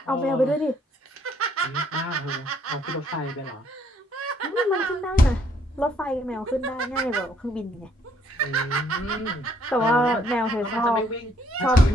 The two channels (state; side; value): normal; both; correlation 0.67